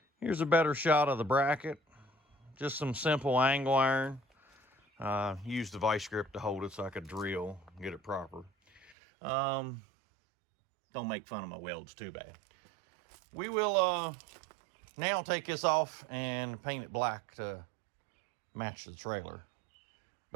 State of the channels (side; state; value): left; drops out; at 9.0 s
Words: here's a better shot of the bracket. Just some simple angle iron. Used the vice grip to hold it so I could drill and get it proper. Don't make fun of my welds too bad. We will now take this off and paint it black to match the trailer.